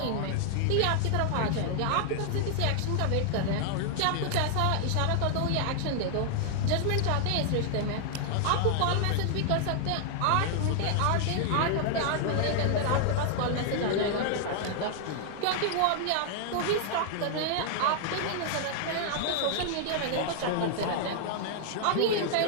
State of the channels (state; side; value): different; both; correlation 0.00